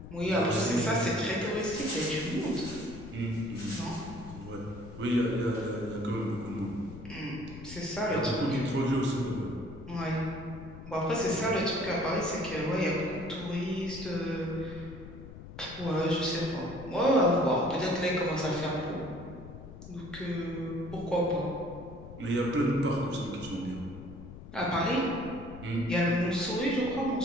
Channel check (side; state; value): left; noise; rumble, 14 dB below the sound